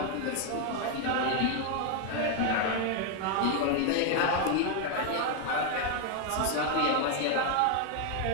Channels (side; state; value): both; different; correlation 0.01